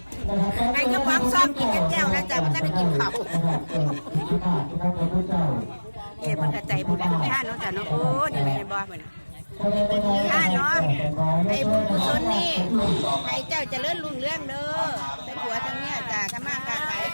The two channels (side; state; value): both; inverted; correlation -1.00